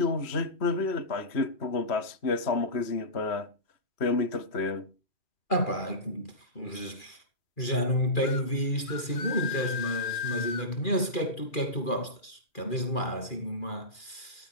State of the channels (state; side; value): late; right; 2.4 ms